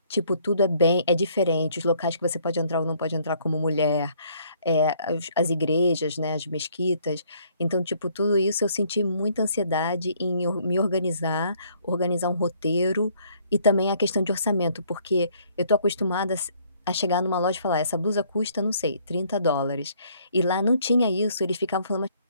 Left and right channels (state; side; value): inverted; both; correlation -0.64